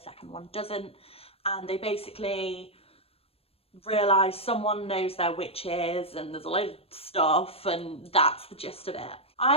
second one doesn't, and they basically realise someone knows they're witches and there's a load of stuff, and that's the gist of it.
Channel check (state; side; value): late; right; 0.28 ms